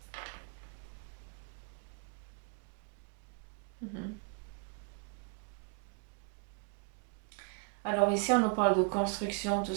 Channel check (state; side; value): quieter; left; 35.9 dB